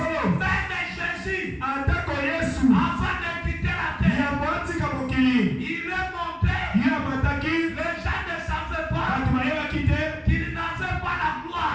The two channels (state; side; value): identical; both; correlation 1.00